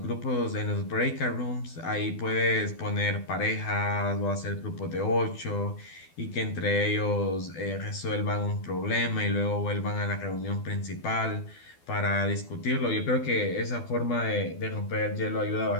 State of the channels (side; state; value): right; late; 12 ms